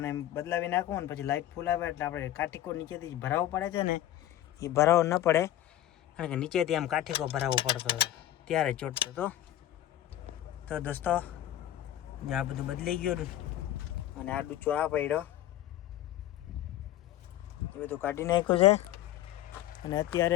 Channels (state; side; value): quieter; right; 13.1 dB